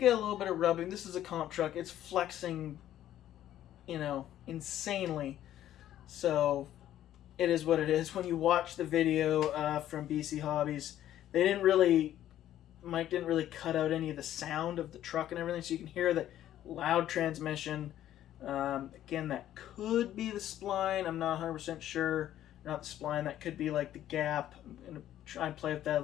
a little bit of rubbing. This is a comp truck. It's flexing, insanely. So it is what it is. When you watch the video from BC Hobbies, Mike didn't really cut out any of the sound of the truck and everything, so you can hear the loud transmission. Again, that could be the spline. I'm not 100% sure. Not the spline. That could be like the gap. I'm going to try and play with that a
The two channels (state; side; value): quieter; right; 12.2 dB